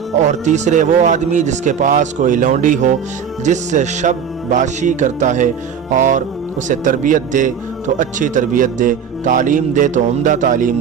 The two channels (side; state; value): left; quieter; 7.4 dB